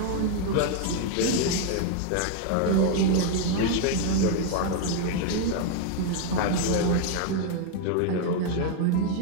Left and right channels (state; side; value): different; both; correlation 0.00